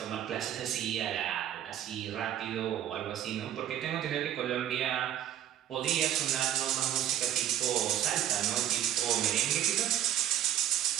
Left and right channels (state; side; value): quieter; left; 11.2 dB